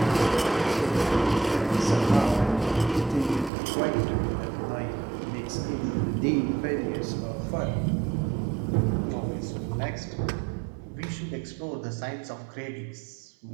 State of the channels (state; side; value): drops out; left; at 3.5 s